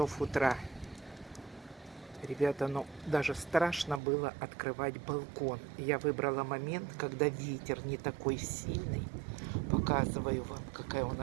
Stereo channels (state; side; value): drops out; left; at 4.0 s